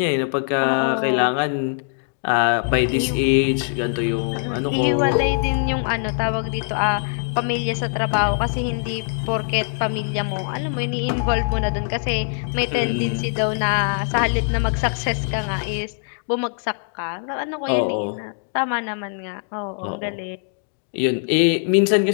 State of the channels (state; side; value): silent; right; digital silence